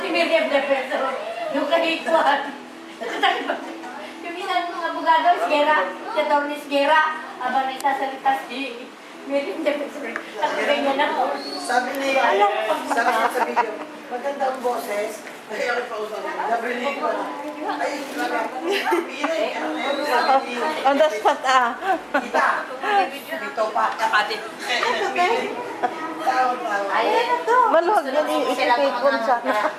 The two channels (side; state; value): both; identical; correlation 1.00